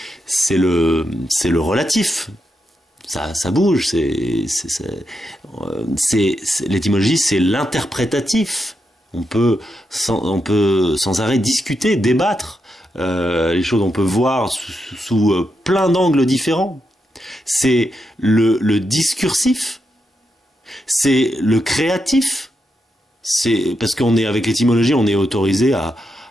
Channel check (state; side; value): normal; both; correlation 0.84